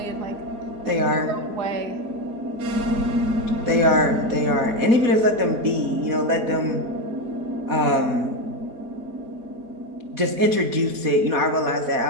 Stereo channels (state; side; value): late; left; 4.2 ms